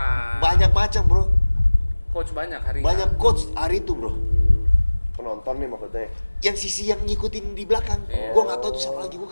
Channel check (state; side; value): inverted; both; correlation -1.00